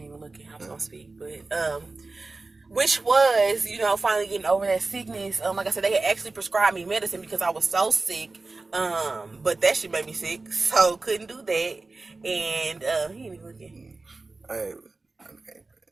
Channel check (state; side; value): quieter; left; 3.6 dB